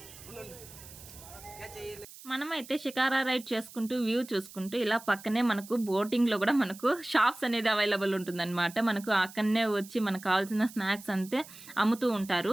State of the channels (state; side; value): noise; right; hiss, 18 dB below the sound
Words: మనమైతే షికారా రైడ్ చేసుకుంటూ వ్యూ చూసుకుంటూ ఇలా పక్కనే మనకు బోటింగ్లో కూడా మనకు షాప్స్ అనేది అవైలబుల్ ఉంటుందన్నమాట. మనకు అక్కడనే వచ్చి మనకు కావాల్సిన స్నాక్స్ అంతే అమ్ముతూ